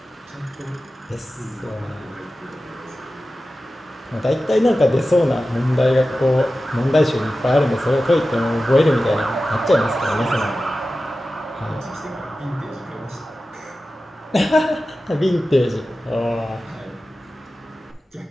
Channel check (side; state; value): both; normal; correlation 0.94